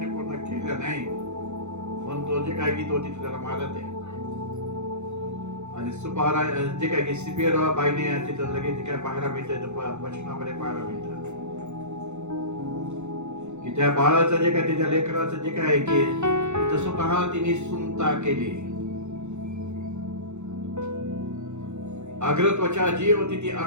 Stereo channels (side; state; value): left; late; 0.83 ms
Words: पूर्ण केल्या नाही, पण तो जे काय की तो तिथे त्याला मारत आहे. आणि सुपारा जे काय की सिपिरा बाईने तिथं लगेच काय पाहायला मिळतं वचनामध्ये पाहायला मिळतं की त्या बाळाचं जे काय त्याच्या लेकराचं जे काय की स्वतः तिने सुनता केली. अग्रत्वचा जी होती ती